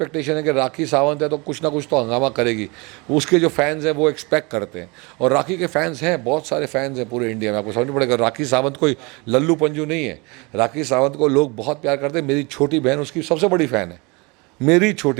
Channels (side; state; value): left; quieter; 27.5 dB